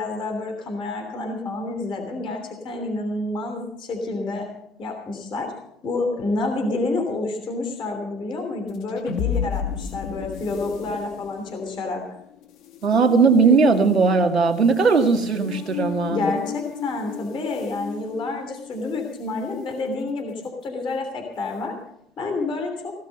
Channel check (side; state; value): both; normal; correlation 0.52